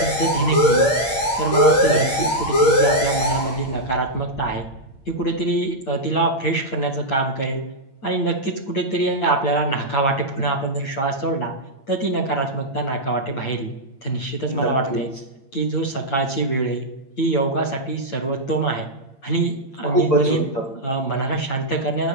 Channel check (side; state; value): right; late; 8.7 ms